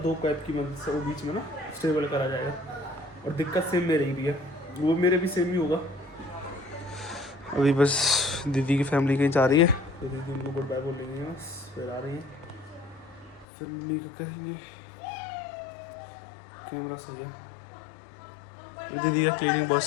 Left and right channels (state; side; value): drops out; right; at 13.5 s